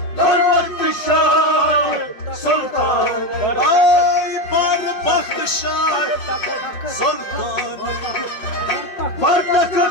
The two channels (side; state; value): right; late; 5.5 ms